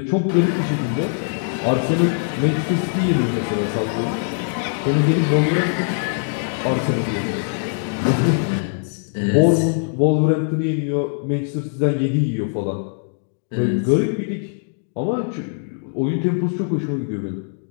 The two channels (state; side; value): silent; right; digital silence